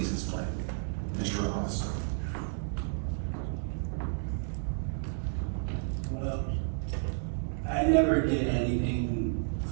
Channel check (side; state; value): left; silent; digital silence